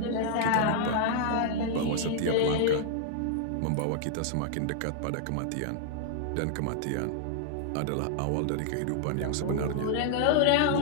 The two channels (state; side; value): different; both; correlation -0.01